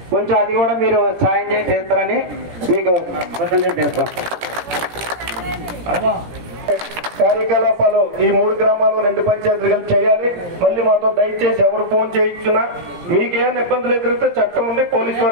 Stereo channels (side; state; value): left; late; 17 ms